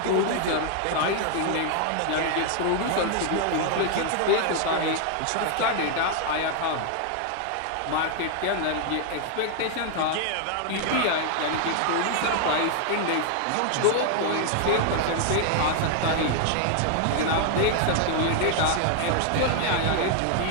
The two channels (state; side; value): different; both; correlation 0.00